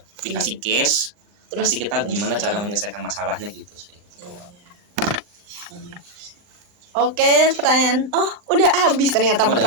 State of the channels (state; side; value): late; left; 39 ms